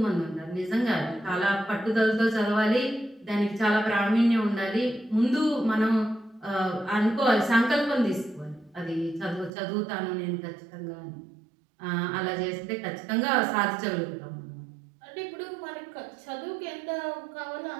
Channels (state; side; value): drops out; left; at 9.5 s